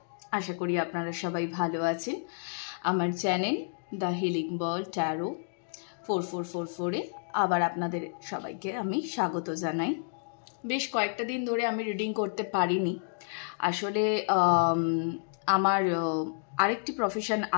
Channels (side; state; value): right; silent; digital silence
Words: আশা করি আপনারা সবাই ভালো আছেন। আমার channel the healing ball tarot 4444-এ আবার আপনাদের সবাইকে আমি স্বাগত জানাই। বেশ কয়েকটা দিন ধরে আমি রিডিং করতে পারিনি। আসলে আমার আরেকটি প্রফেশন